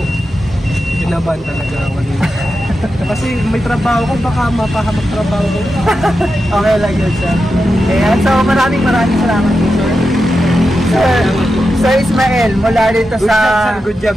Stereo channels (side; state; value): both; normal; correlation 0.89